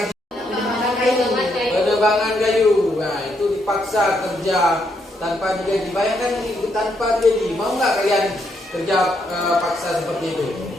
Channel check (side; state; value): both; normal; correlation 0.76